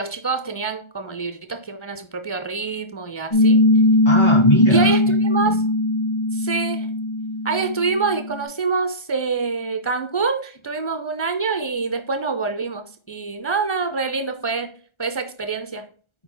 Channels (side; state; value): right; late; 1.4 ms